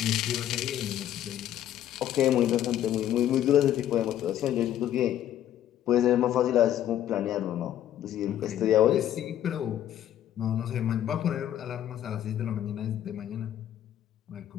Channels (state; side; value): quieter; right; 11.5 dB